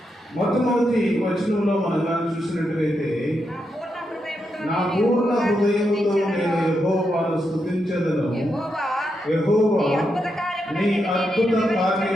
మొట్టమొదటి వచనంలో మనం చూసినట్లయితే, నా పూర్ణ హృదయముతో నేను యెహోవాను స్తుతించెదను, యెహోవా నీ అద్భుత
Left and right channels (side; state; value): both; normal; correlation 0.84